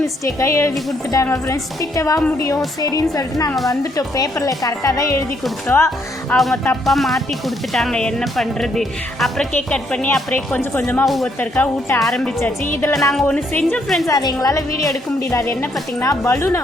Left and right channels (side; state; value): both; normal; correlation 0.72